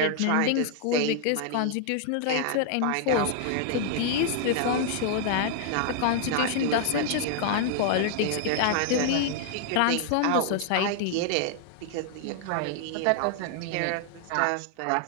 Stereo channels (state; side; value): different; both; correlation 0.00